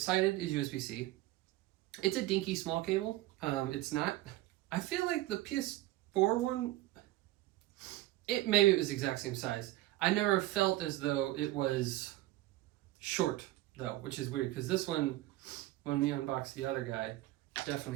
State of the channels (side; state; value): left; quieter; 16.9 dB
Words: is USB-C. It's a dinky small cable. It's not, I feel like the PS4 one, maybe it was the exact same size. I never felt as though it was short though, which is weird because this one, when we unboxed the other guy,